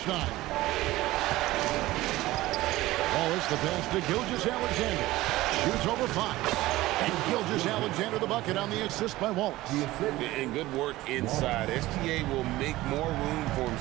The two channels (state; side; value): quieter; left; 17.5 dB